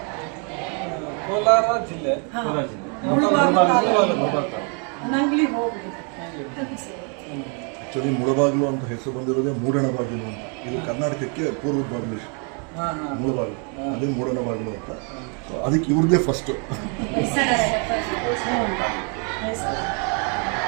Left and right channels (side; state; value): left; quieter; 38.3 dB